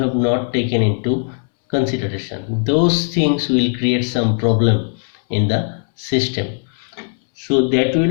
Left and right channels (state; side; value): silent; right; 67 dB below the other